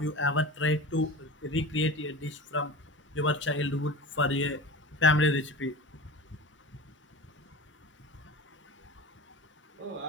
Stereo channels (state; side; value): normal; both; correlation 0.33